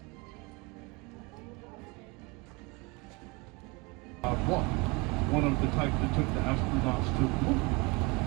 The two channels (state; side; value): quieter; left; 26.6 dB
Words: One of the type that took the astronauts to the moon.